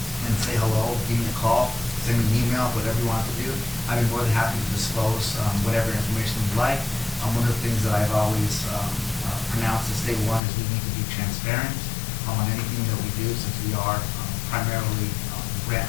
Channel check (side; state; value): right; drops out; at 10.4 s